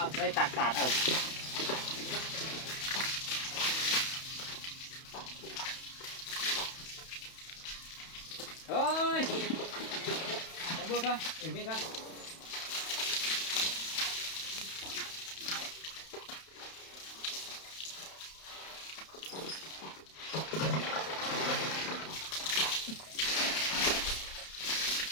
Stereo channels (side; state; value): right; late; 31 ms